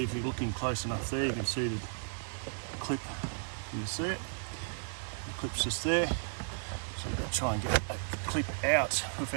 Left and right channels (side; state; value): left; silent; digital silence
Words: if you're looking close enough there, you can see the clip. Can you see it? The clip's just there. So you've got to try and get a clip out